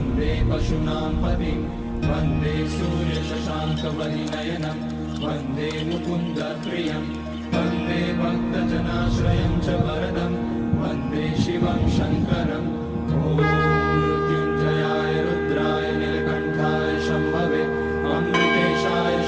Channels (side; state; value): both; identical; correlation 1.00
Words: पशूनां पतिं वन्दे सूर्यशशाङ्कवलिनयनं वन्दे मुकुन्दप्रियं वन्दे भक्तजनाश्रयं च वरदं वन्दे शिवं शङ्करम् ॐ मृत्युञ्जयाय रुद्राय नीलकण्ठाय शम्भवे अमृतेशाय